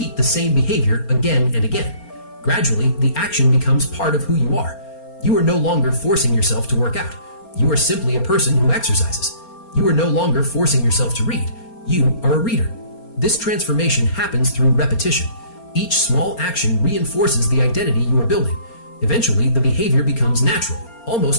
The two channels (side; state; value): right; late; 4.3 ms